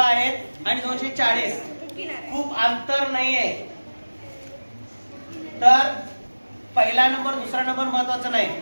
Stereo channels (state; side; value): inverted; both; correlation -1.00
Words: आणि 240. खूप अंतर नाहीये. तर पहिला नंबर दुसरा नंबर महत्वाचा नाही,